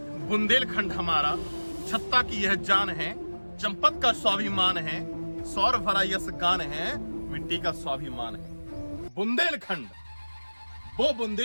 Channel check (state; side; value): inverted; both; correlation -1.00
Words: बुंदेलखंड हमारा, छत्ता की यह जान है, चंपत का स्वाभिमान है, सौर भरा यस गान है, मिट्टी का स्वाभिमान है। बुंदेलखंड, वो